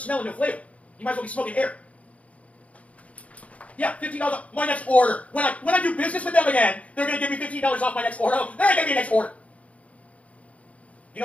and no flavor. You might as well be smoking air. Yeah, $15 off my next order. When I do business with them again, they're going to give me $15 off my next order. Oh, they're going to give me a next order.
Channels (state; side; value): late; right; 0.066 ms